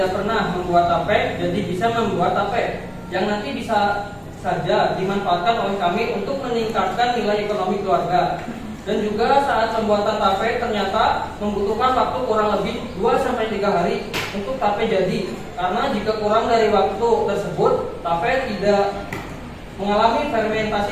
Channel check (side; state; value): both; identical; correlation 1.00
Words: pernah membuat tape jadi bisa membuat tape yang nanti bisa saja dimanfaatkan oleh kami untuk meningkatkan nilai ekonomi keluarga. Dan juga saat pembuatan tape ternyata membutuhkan waktu kurang lebih 2-3 hari untuk tape jadi. Karena jika kurang dari waktu tersebut, tape tidak mengalami